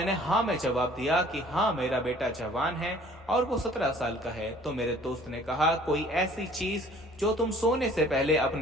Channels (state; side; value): normal; both; correlation 0.53